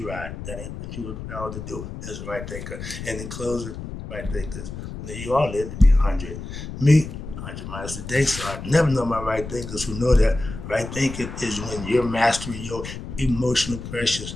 ride. That ain't what you were proud to do as a right thinker. And in closing, right thinkers. Now, you all live to be 100. Me, 100 miles a day. So I never know my right thinkers who know that right thinking is when you're mastering your emotional pressures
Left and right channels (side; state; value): left; noise; rumble, 9 dB below the sound